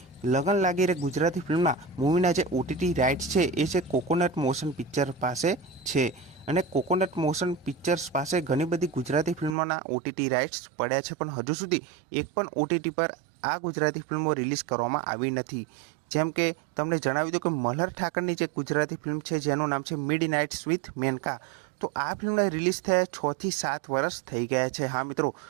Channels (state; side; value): drops out; left; at 9.6 s